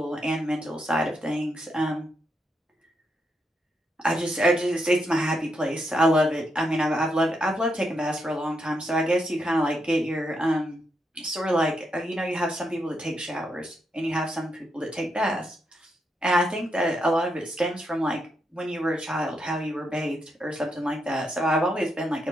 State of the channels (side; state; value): both; normal; correlation 0.81